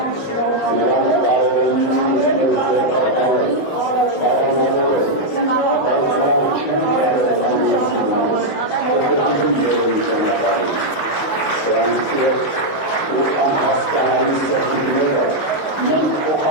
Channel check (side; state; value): right; late; 19 ms